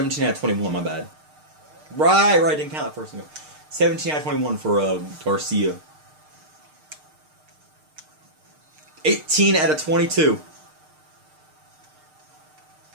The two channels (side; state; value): left; late; 6.6 ms